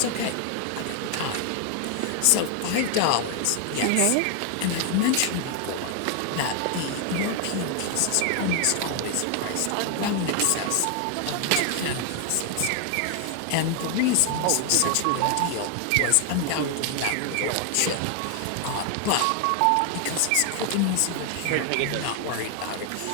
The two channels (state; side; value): different; both; correlation 0.00